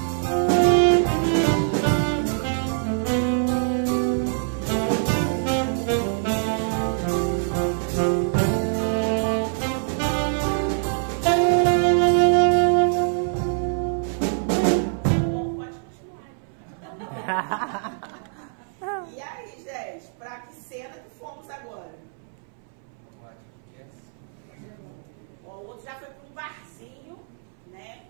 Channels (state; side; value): silent; left; 62 dB below the other